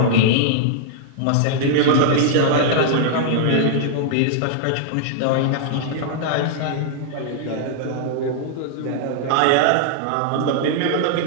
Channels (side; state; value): both; different; correlation -0.01